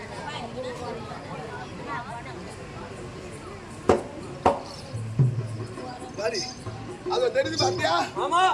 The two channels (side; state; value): both; identical; correlation 1.00